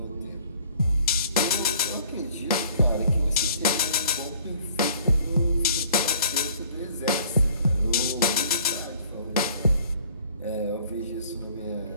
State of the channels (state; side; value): inverted; both; correlation -0.55